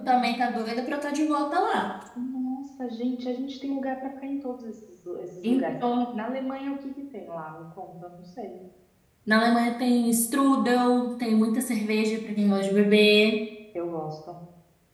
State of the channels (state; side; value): identical; both; correlation 1.00